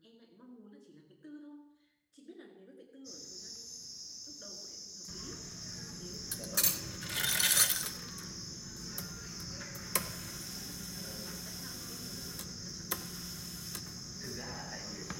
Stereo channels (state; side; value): identical; both; correlation 1.00